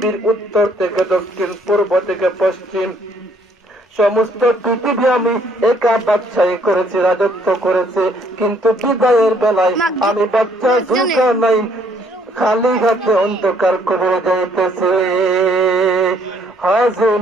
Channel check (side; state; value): both; normal; correlation 0.65